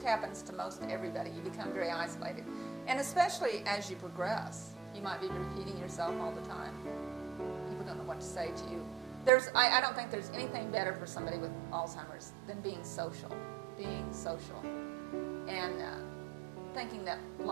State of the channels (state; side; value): drops out; left; at 9.3 s